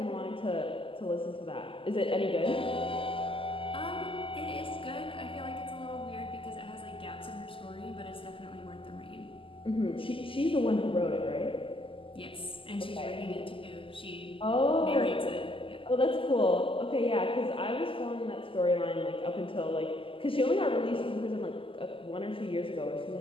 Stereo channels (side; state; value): right; late; 0.25 ms